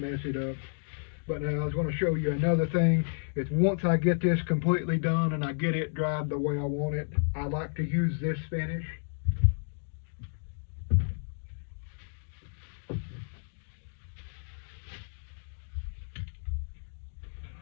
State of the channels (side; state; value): right; silent; digital silence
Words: it up. But now I was going to show you another thing. Is once I get this completely done and I get it dried the way I want it, I like to use this finish.